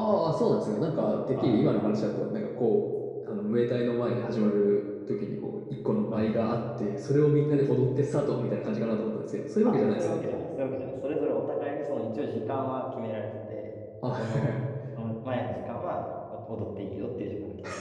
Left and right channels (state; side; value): identical; both; correlation 1.00